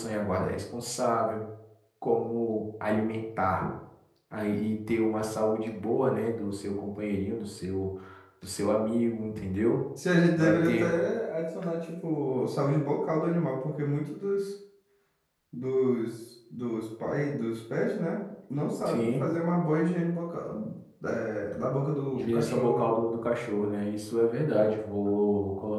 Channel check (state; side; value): identical; both; correlation 1.00